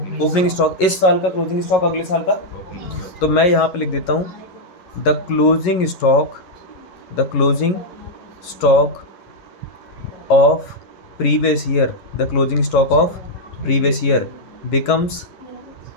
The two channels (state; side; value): late; right; 11 ms